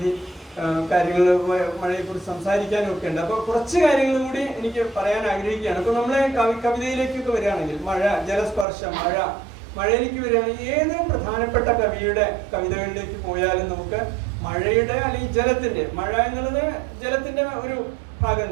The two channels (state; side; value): drops out; left; at 8.7 s